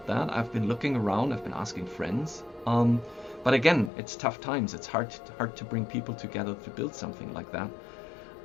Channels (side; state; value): right; drops out; at 3.9 s